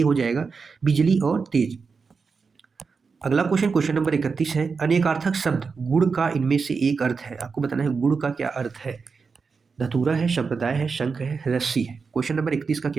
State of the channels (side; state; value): left; quieter; 5.0 dB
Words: जाएगा, बिजली और तेज। अगला क्वेश्चन, क्वेश्चन नंबर 31 है, अनेकार्थक शब्द गुड़ का इनमें से एक अर्थ है। आपको बताना है गुड़ का क्या अर्थ है। धतूरा है, संप्रदाय है, शंख है, रस्सी है। क्वेश्चन नंबर 31 का